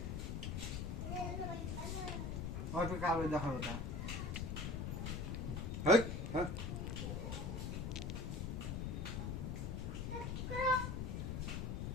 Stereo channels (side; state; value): left; noise; rumble, 2 dB below the sound